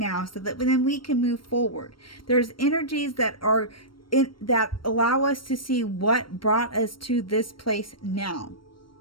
so that then we can move forward. There's energies that are that allow us to see what brought us to this place now.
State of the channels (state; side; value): late; right; 0.73 ms